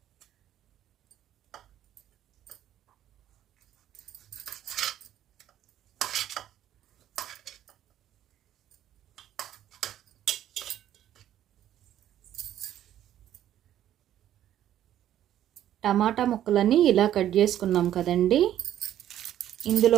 టమాటా ముక్కలన్నీ ఇలా కట్ చేసుకున్నాం కదండి.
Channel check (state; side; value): quieter; left; 11.7 dB